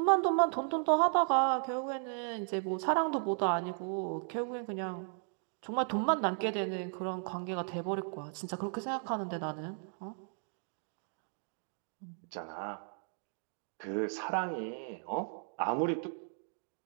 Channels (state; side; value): silent; left; 54 dB below the other